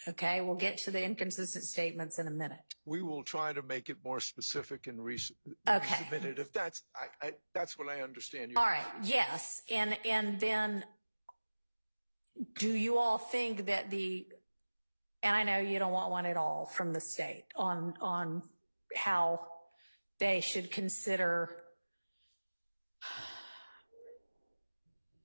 Okay. We'll get to the inconsistent statements in a minute. We will try to make it more specific and resubmit it. If that's what I understand. All right. Yes. And then do you all think that and I know you don't want one at all from the state on how they should consider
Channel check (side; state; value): both; inverted; correlation -1.00